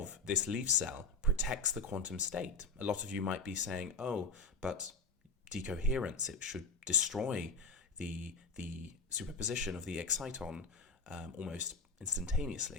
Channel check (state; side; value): quieter; right; 3.8 dB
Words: this leaf cell protects the quantum state. A lot of you might be saying, oh, but decoherence, it should destroy the superposition of the exciton almost